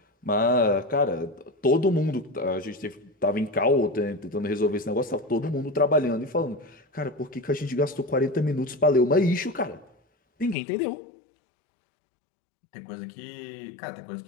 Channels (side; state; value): right; drops out; at 10.6 s